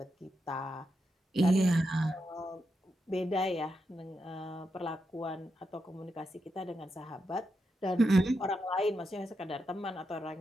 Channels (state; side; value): normal; both; correlation 0.85